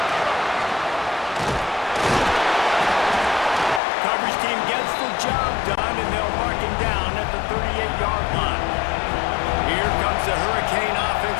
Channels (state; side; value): drops out; right; at 3.8 s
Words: Coverage team gets the job done, and they'll mark him down at the 38-yard line. Here comes the Hurricane